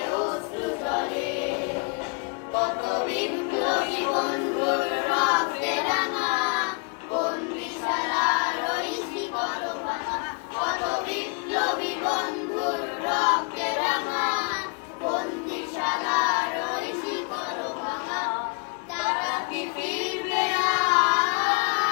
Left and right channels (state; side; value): quieter; right; 33.2 dB